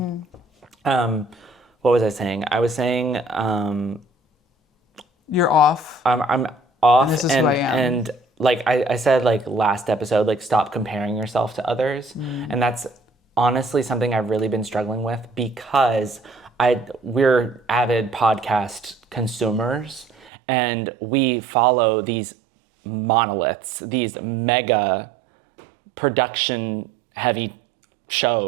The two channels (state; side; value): drops out; left; at 20.3 s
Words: What was I saying? I was saying... you're off. I'm off. And this is who I am. And like I said, like last episode, like stop comparing yourself to others. And that's honestly something I've really been struggling with because we're avid podcast consumers and we follow these monoliths, these mega production heavy